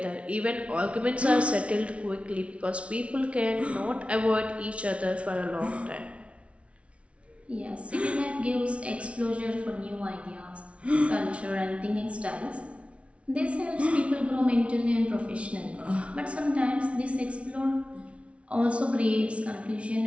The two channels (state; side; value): late; left; 0.062 ms